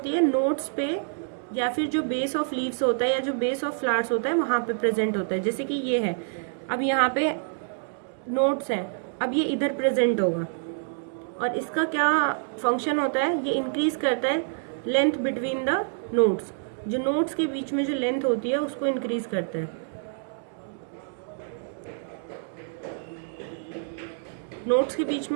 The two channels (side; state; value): left; silent; digital silence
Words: है, नोट्स पे या फिर जो बेस ऑफ लीव्स होता है या जो बेस ऑफ फ्लावर्स होता है वहाँ पे प्रेजेंट होता है। जैसे कि ये है, अब यहाँ पे नोट्स हैं, अब ये इधर प्रेजेंट होगा और इसका क्या फंक्शन होता है, ये इंक्रीज करता है लेंथ बिटवीन द नोट्स। जो नोड्स के बीच में जो लेंथ होती है उसको इंक्रीज करता है। नोड्स के बीच